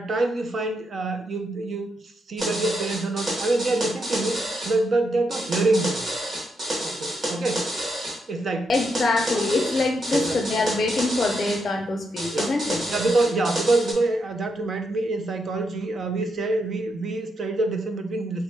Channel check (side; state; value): both; normal; correlation 0.81